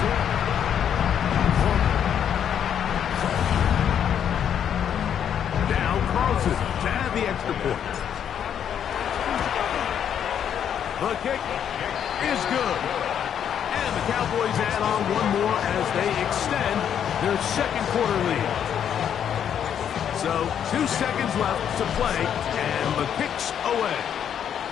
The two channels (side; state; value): right; quieter; 8.9 dB